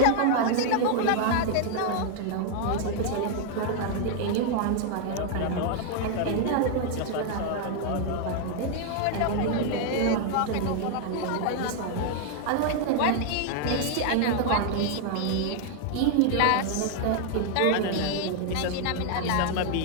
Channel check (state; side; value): different; both; correlation 0.00